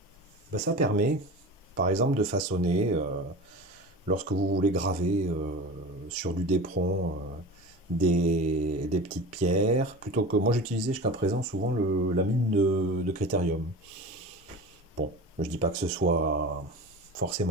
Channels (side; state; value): both; normal; correlation 0.33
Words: Ben, ça permet, par exemple, de façonner, lorsque vous voulez graver sur du dépron des petites pierres, plutôt que moi j'utilisais jusqu'à présent souvent la mine de critérium. Bon, je dis pas que ce soit